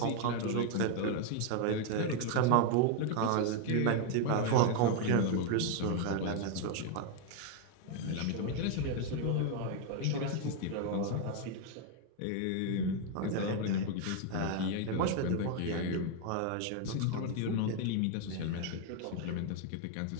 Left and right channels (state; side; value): different; both; correlation 0.01